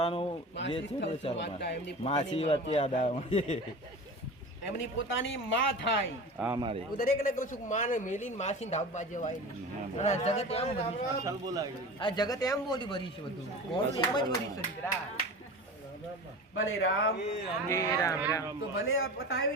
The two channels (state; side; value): normal; both; correlation 0.33